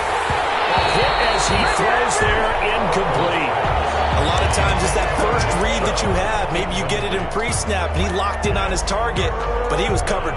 hit as he throws there, incomplete. A lot of times it's that first read that you have. Maybe you get it in pre-snap, and he locked in on his target, but he was covered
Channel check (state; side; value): identical; both; correlation 1.00